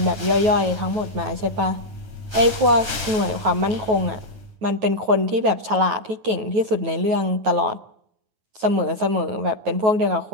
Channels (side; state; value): left; late; 8.9 ms